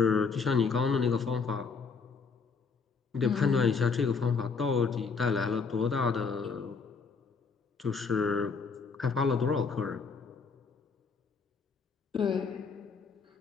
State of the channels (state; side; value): quieter; right; 5.1 dB